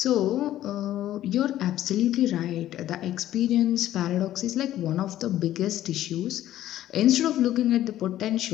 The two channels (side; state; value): right; quieter; 13.2 dB